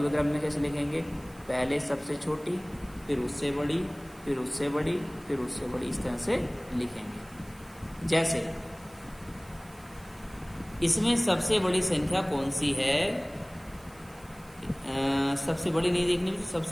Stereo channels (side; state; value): right; noise; hiss, 24 dB below the sound